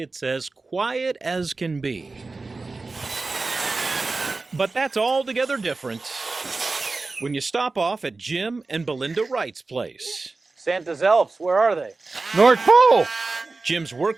as quiet as can be. But that's altogether different when you stop off at Jim and Belinda Wright's place. Santa's elves, where are they? North Pole! Jim's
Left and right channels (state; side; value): quieter; left; 3.7 dB